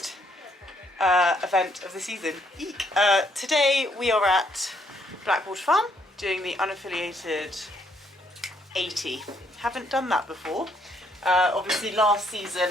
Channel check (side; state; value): both; normal; correlation 0.70